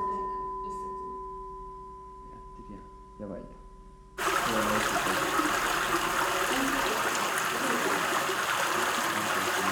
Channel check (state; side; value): identical; both; correlation 1.00